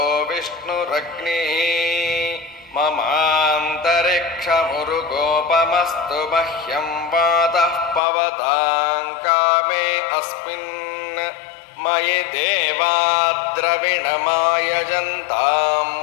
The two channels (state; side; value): drops out; right; at 8.0 s